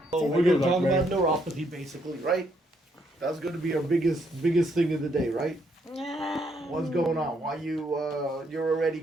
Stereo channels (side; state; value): both; normal; correlation 0.73